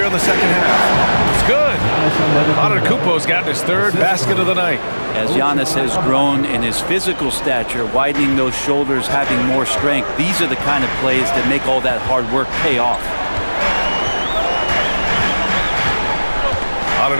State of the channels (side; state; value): both; inverted; correlation -1.00